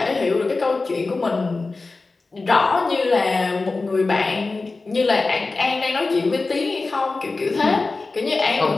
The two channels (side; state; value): right; quieter; 3.7 dB